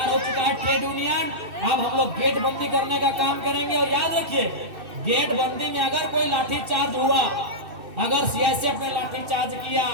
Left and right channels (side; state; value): left; late; 2.6 ms